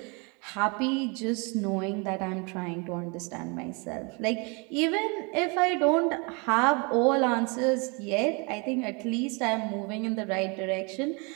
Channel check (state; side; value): quieter; left; 31.5 dB